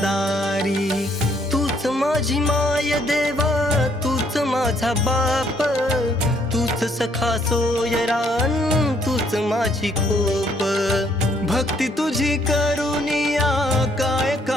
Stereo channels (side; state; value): both; normal; correlation 0.67